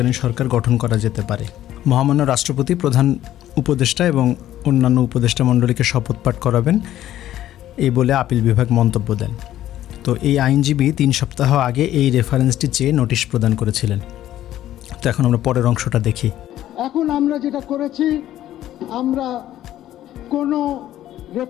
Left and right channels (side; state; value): right; quieter; 12.9 dB